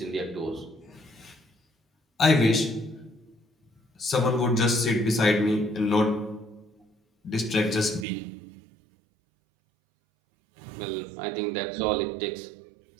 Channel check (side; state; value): left; drops out; at 8.1 s